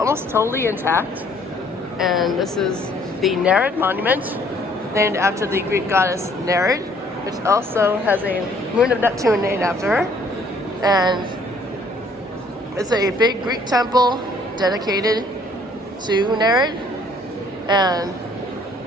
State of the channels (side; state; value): both; normal; correlation 0.61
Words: totally intact. And this is the Nereid monument, named after the Greek goddess Nereid, which also has a moon of Neptune named after her. And it's a big Greek temple dedicated to Nereid, and